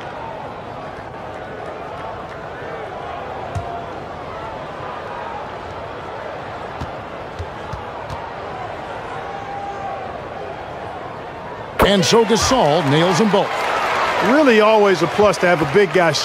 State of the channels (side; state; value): both; identical; correlation 1.00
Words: And so Gasol nails them both. Really always a plus to have a big guy